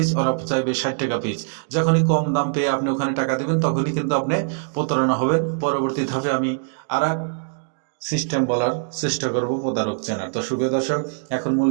ওরা চাইবে 60 টাকা পিস। যখনই কম দাম পেয়ে আপনি ওখানে টাকা দেবেন তখনই কিন্তু আপনি প্রতারণা হবেন। পরবর্তী ধাপে আমি আর সিস্টেম বলার চেষ্টা করব প্রতারক চেনার। তো সুপ্রিয় দর্শক, এখন মূল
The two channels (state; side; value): silent; left; digital silence